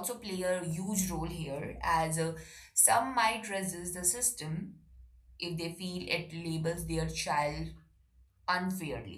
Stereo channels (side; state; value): both; identical; correlation 1.00